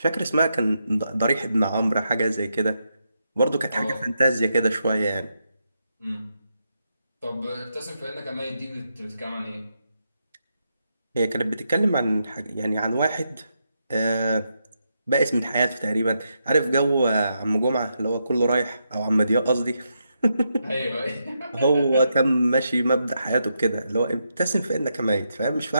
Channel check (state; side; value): inverted; both; correlation -0.83